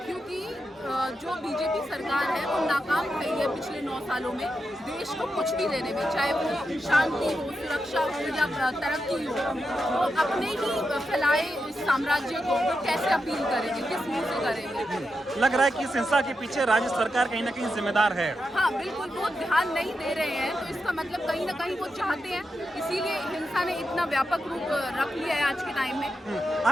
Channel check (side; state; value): both; normal; correlation 0.87